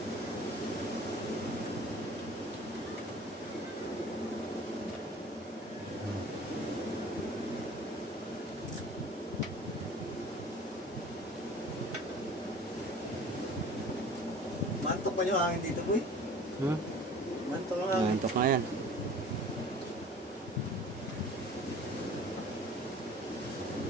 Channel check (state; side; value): normal; both; correlation 0.46